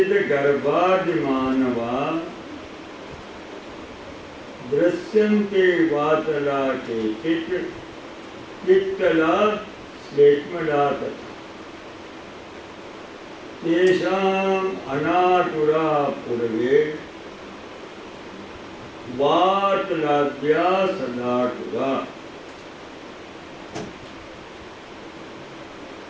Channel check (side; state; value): both; identical; correlation 1.00